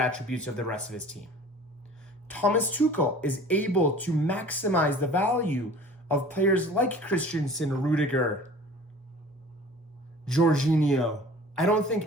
of the rest of his team. Thomas Tuchel is able to maximize the value of players like Christensen, Rudiger, Jorginho. I don't think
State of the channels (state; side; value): normal; both; correlation 0.45